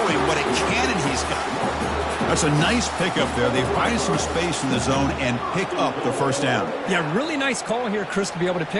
what a cannon he's got. That's a nice pickup there. They find some space in the zone and pick up the first down. Yeah, really nice call here, Chris, to be able to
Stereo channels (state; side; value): identical; both; correlation 1.00